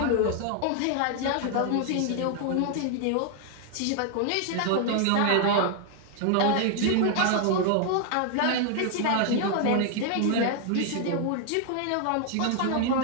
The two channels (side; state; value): both; different; correlation 0.00